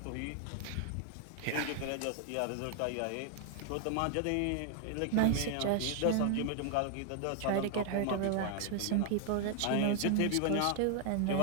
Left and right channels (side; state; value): both; different; correlation 0.00